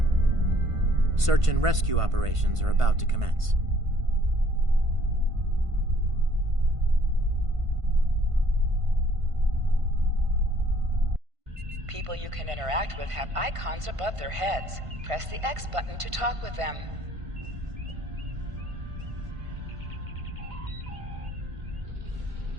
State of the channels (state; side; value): late; left; 1.5 ms